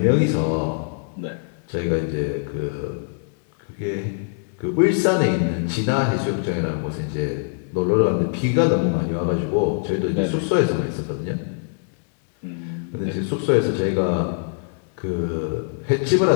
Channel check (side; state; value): right; silent; digital silence